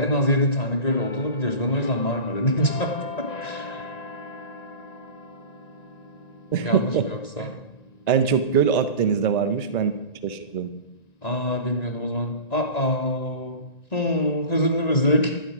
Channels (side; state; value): right; late; 1.9 ms